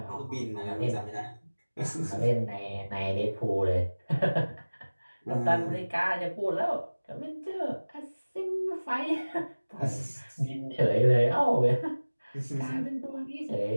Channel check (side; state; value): both; inverted; correlation -1.00